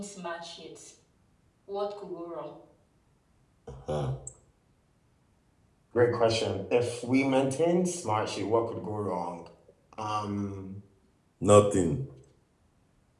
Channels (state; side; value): identical; both; correlation 1.00